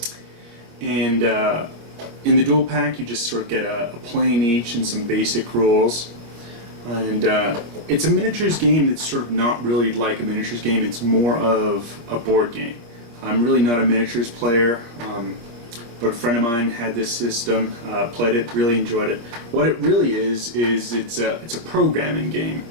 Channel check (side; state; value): left; late; 26 ms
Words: And in the dual pack you just sort of get a plane each and some basic rules. And it's a miniatures game that's sort of not really like a miniatures game. It's more of a board game. I'm really not a miniatures player, but a friend of mine had this system, played it, really enjoyed it. What it really is it's a programming game